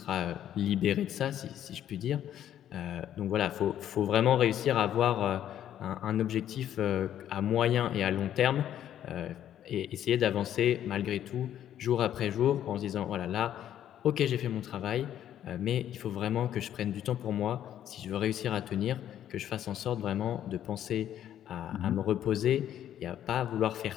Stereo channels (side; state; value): right; quieter; 10.9 dB